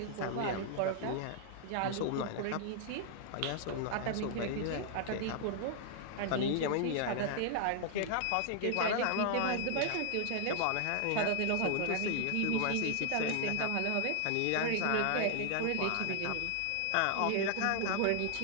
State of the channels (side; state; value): both; different; correlation 0.00